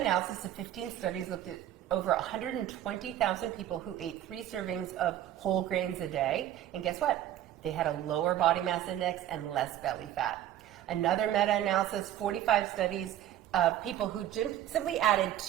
of 15 studies, looked at over 120,000 people who ate 3 servings of whole grains a day. And guess what? They had a lower body mass index and less belly fat. Another meta-analysis, 45 studies of people who simply added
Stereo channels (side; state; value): left; quieter; 12.2 dB